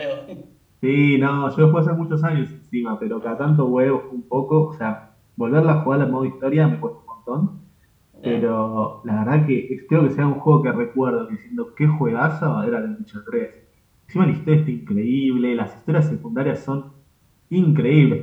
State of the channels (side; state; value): both; identical; correlation 1.00